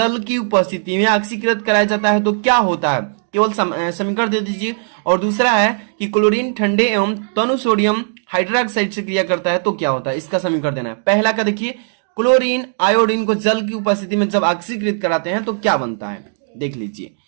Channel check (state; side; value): silent; left; digital silence